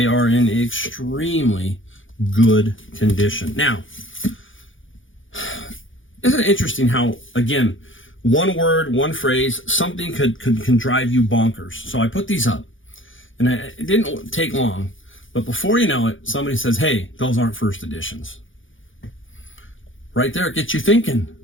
are in extremely good condition. Now, isn't it interesting how, again, one word, one phrase, something can drive you bonkers. So I put these up, and it didn't take long, but before you know it, somebody says, hey, those aren't first editions. Right there, it gets you thinking.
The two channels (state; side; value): late; right; 0.57 ms